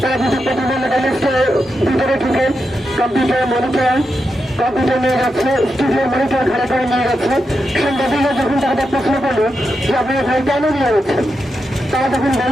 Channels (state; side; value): normal; both; correlation 0.86